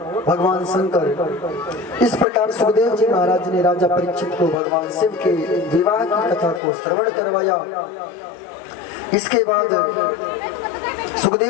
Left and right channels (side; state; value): right; drops out; at 6.6 s